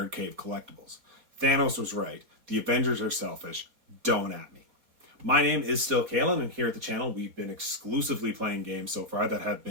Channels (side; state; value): left; late; 4.2 ms